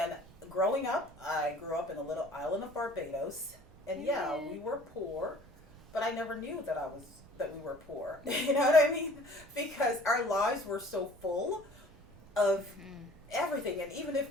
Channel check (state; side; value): noise; right; rumble, 22 dB below the sound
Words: growing up, I grew up in a little island of Barbados, and yeah, we were poor, but I never knew that we were poor. You know what I mean? Because our lives were so full of everything, and even if